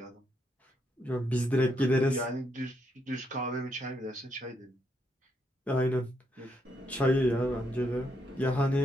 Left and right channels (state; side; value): normal; both; correlation 0.77